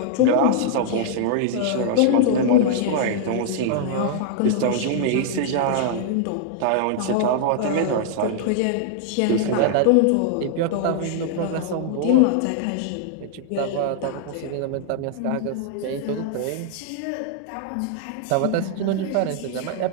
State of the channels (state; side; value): different; both; correlation -0.01